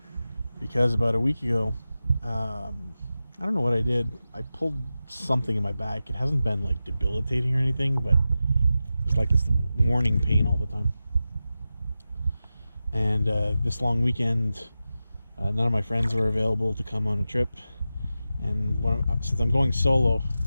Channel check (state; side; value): inverted; both; correlation -0.93